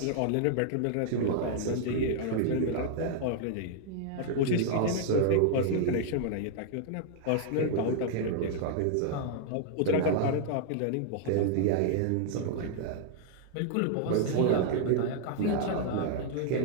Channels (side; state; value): both; different; correlation -0.01